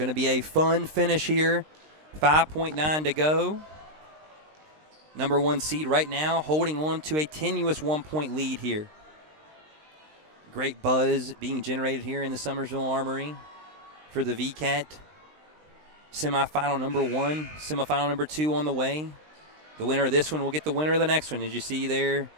to be a fun finish here. 5.9 to go. Number 1 seed right now holding on to a tenuous 1-point lead here. Great buzz being generated here in the Summersville Armory for the Wvcat. Semifinal number 1, semifinal number 2 on the way. The winner of this one will get the winner of the next one. As you see there,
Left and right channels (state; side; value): late; left; 20 ms